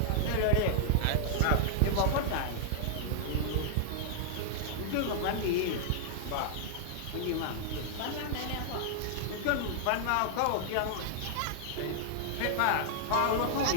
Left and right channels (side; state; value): both; different; correlation -0.01